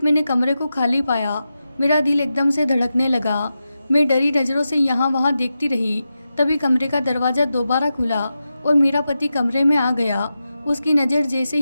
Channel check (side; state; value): both; inverted; correlation -0.90